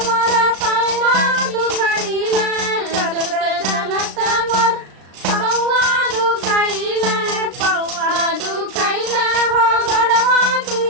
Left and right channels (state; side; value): late; left; 36 ms